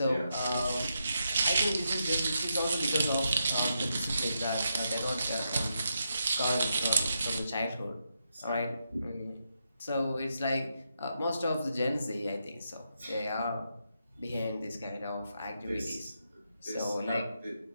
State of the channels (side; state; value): both; inverted; correlation -0.83